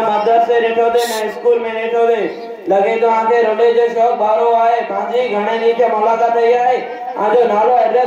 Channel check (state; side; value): identical; both; correlation 1.00